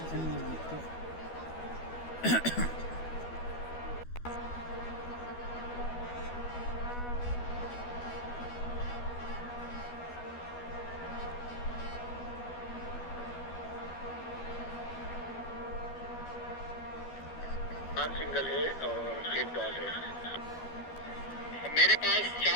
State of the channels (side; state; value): right; late; 12 ms